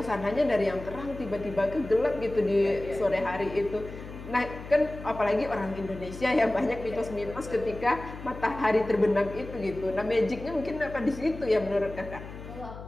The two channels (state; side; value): noise; left; hum, 13 dB below the sound